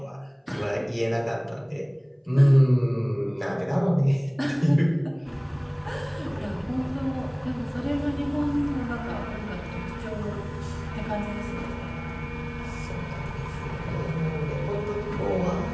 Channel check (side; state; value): both; identical; correlation 1.00